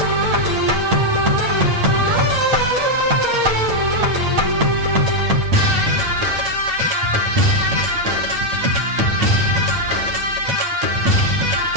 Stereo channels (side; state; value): left; late; 8.9 ms